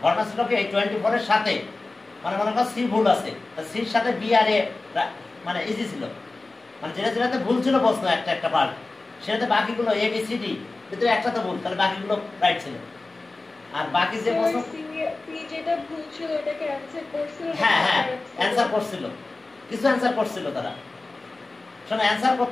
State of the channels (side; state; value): right; quieter; 3.3 dB